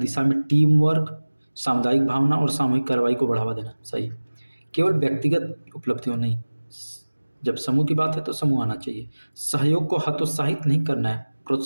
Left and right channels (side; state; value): both; inverted; correlation -1.00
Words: में टीम वर्क, सामुदायिक भावना और सामूहिक कार्रवाई को बढ़ावा देना, सही। केवल व्यक्तिगत उपलब्धियों नहीं, जब समूह की बात है तो समूह आना चाहिए। सहयोग को हतोत्साहित नहीं करना है,